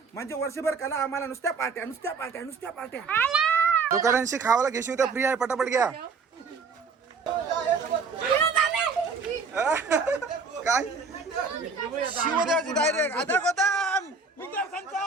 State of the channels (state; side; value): quieter; left; 4.7 dB